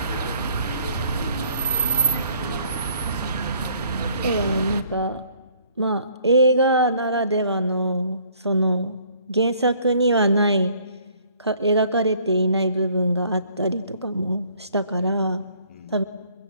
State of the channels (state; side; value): inverted; both; correlation -0.61